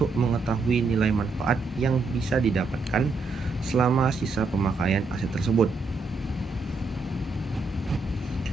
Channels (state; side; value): quieter; left; 3.9 dB